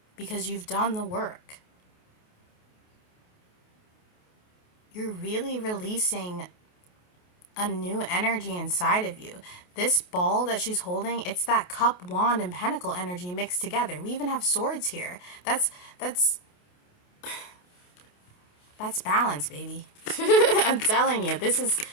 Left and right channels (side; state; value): right; late; 28 ms